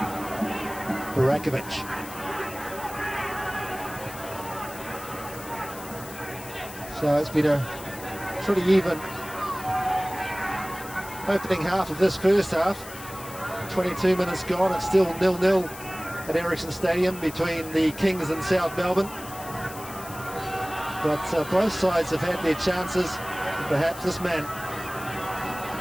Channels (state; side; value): noise; left; hiss, 15 dB below the sound